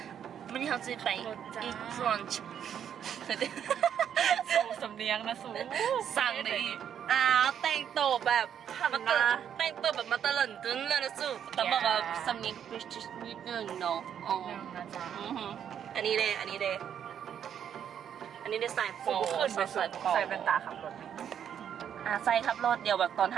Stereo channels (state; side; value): quieter; left; 8.9 dB